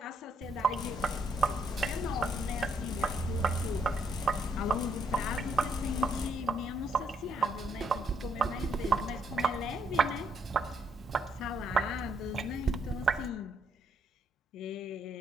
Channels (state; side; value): normal; both; correlation 0.73